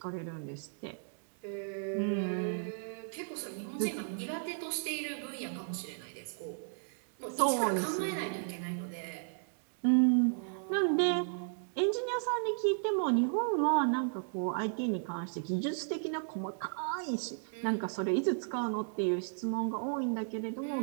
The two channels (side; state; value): left; silent; digital silence